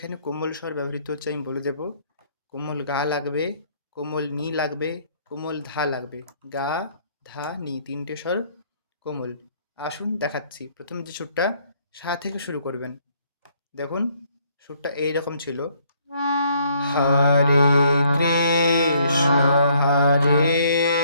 কোমল স্বর ব্যবহৃত হচ্ছে আমি বলে দেব। কোমল গা লাগবে, কোমল নি লাগবে, কোমল ধা লাগবে। গা ধা নি তিনটে স্বর কোমল। আসুন দেখাচ্ছি। প্রথম যে সুরটা সা থেকে শুরু করবেন। দেখুন সুরটা এইরকম ছিল। হরে কৃষ্ণ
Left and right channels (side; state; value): both; inverted; correlation -0.66